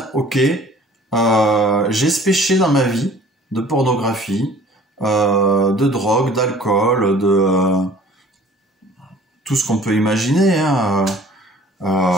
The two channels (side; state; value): both; normal; correlation 0.50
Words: ok, j'ai ce péché dans ma vie, de pornographie, de drogue, d'alcool, de tout ce qu'on peut imaginer, hein,